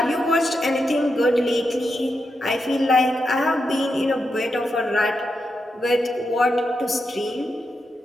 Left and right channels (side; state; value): both; normal; correlation 0.85